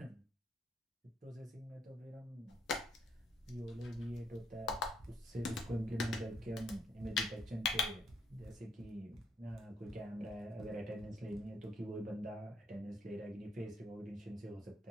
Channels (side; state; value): both; normal; correlation 0.71